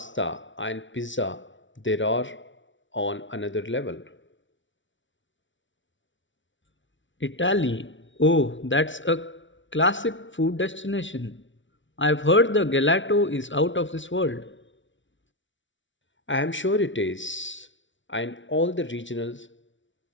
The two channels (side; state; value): right; late; 0.55 ms